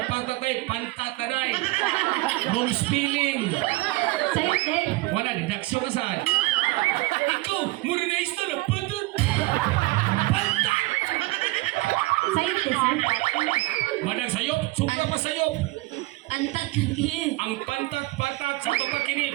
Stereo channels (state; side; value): quieter; left; 20.9 dB